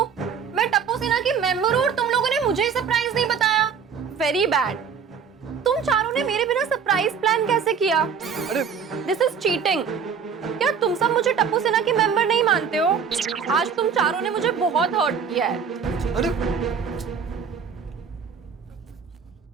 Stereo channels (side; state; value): left; quieter; 6.6 dB